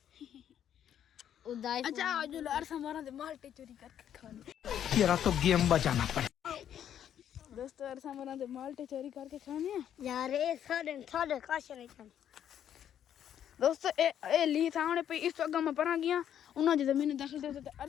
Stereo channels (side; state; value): right; quieter; 9.9 dB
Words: उदाई अच्छा जो अरसा मोरा दे मल्टी चोरी करके खाने तेरा तो गेम बजाना पड़े दोस्तों अरसा मोरा दे मल्टी चोरी करके खाने यार ये साढ़े काश नहीं खाने दोस्तों ए ली सामने पे इस जगह में परा गया उन्होंने जो जमीन दाखिल थे तो